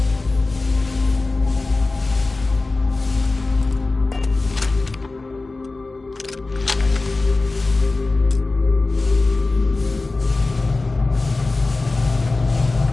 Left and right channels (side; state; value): right; quieter; 3.4 dB